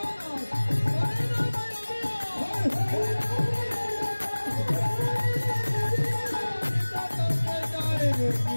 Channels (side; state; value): both; inverted; correlation -1.00